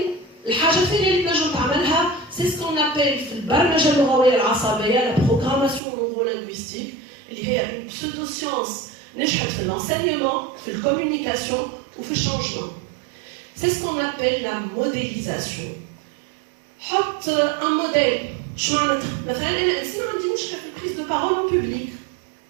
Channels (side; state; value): left; drops out; at 5.8 s